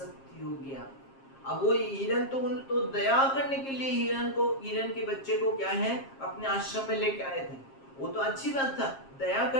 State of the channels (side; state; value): right; late; 7.5 ms